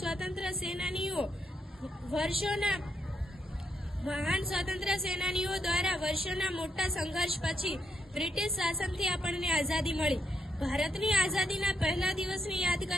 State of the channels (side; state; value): both; normal; correlation 0.78